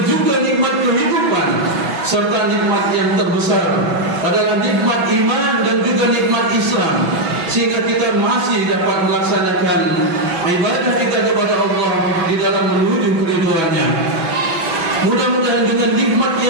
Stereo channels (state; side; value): late; left; 6.1 ms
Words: juga nikmat kehidupan, serta nikmat yang terbesar adalah nikmat iman dan juga nikmat Islam, sehingga kita masih dapat melaksanakan ibadah kita kepada Allah di dalam menuju keridhaan-Nya. Mudah-mudahan dengan nikmat